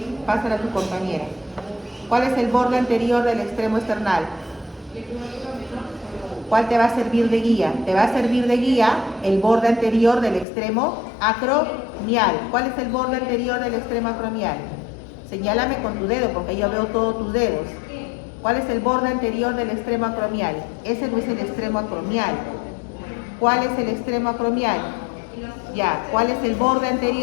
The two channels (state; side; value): drops out; right; at 10.5 s